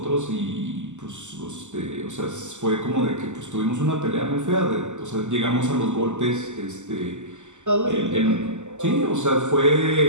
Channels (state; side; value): late; left; 0.84 ms